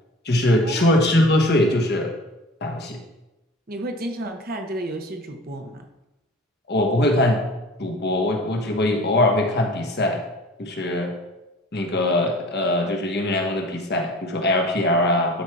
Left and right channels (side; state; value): both; normal; correlation 0.41